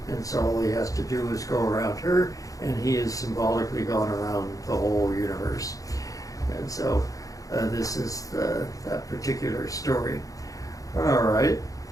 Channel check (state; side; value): late; right; 0.17 ms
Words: And so all he has to do is go around her, and he has symbolically gone around the whole universe. And so this is that particular story. All right.